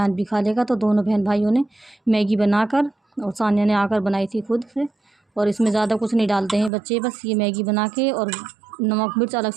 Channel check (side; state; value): left; drops out; at 6.7 s